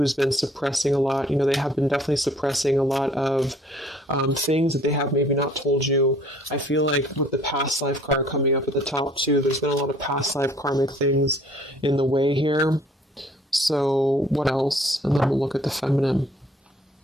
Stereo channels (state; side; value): normal; both; correlation 0.57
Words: been suppressing a lot. They have been definitely suppressing a lot of things that they have maybe not told you. I feel like with the past life card coming up at the top too, there's been a lot of past life karmic things in the way here. So what else? And then we'll look at the feminine.